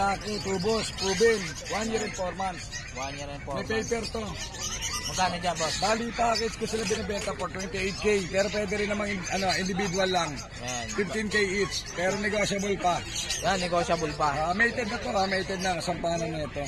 tubos, proven. 1 year and 4 months. 1 year and 4 May months. paper to. Magkano dyan, boss? Bali package ko sila binibenta for 28K. Pero pwede rin namang individual lang. Yan. 15K each. Pero negotiable pa. Yan, negotiable pa. Mated na to, mated na. Sampanan na ito.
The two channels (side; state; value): both; identical; correlation 1.00